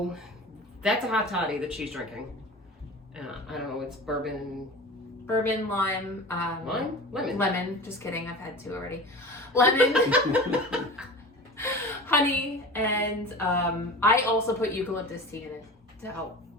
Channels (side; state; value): both; normal; correlation 0.35